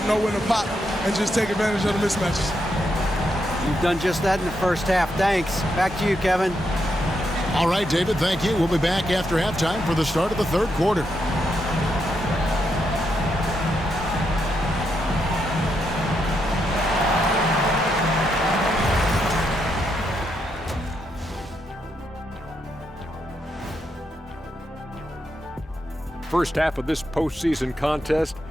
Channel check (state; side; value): normal; both; correlation 0.81